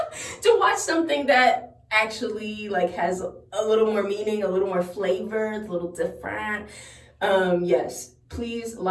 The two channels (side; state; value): both; identical; correlation 1.00